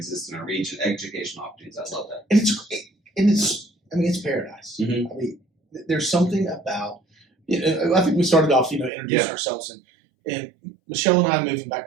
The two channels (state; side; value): drops out; left; at 8.9 s